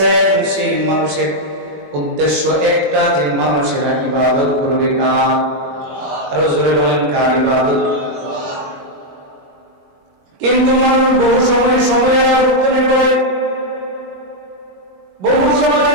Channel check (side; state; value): left; late; 21 ms